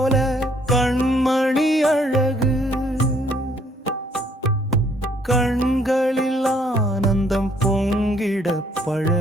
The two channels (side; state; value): both; normal; correlation 0.65